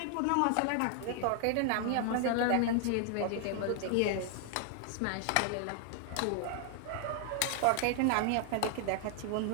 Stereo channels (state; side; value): different; both; correlation 0.00